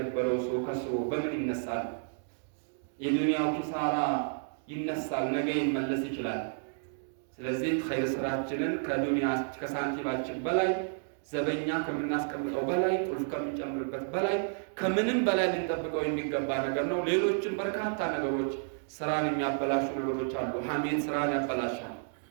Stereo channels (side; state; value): left; silent; digital silence